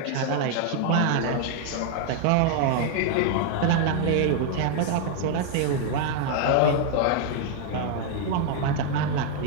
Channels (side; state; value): both; different; correlation 0.00